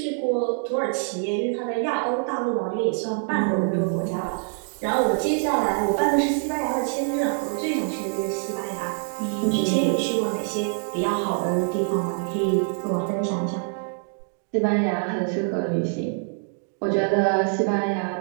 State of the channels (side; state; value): left; silent; 56 dB below the other